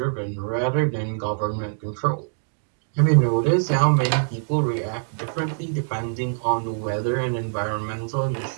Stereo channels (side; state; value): left; silent; digital silence